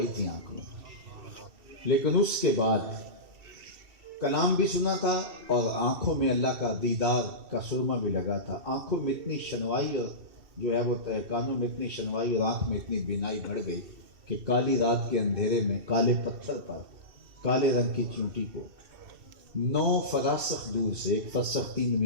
تھی آنکھ میں. لیکن اس کے بعد کلام بھی سنا تھا, اور آنکھوں میں اللہ کا دیدار کا سرما بھی لگا تھا. آنکھوں میں اتنی شنوائی, اور جو ہے وہ کانوں میں اتنی شنوائی اور آنکھ میں اتنی بینائی بڑھ گئی کہ کالی رات کے اندھیرے میں کالے پتھر پر کالے رنگ کی چونٹی کو 9 فراسخ دور سے, ایک فرسخ 3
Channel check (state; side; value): late; left; 2.7 ms